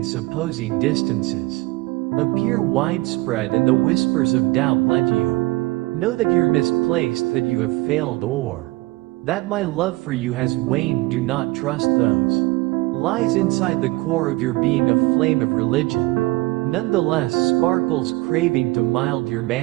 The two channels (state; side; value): quieter; left; 21.0 dB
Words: supposing distances appear widespread and the whispers of doubt, let you know that you're misplaced, that you have failed, or that my love for you has waned. Do not trust those lies inside the core of your being. A flame of religion nonetheless sparkles, craving to mild your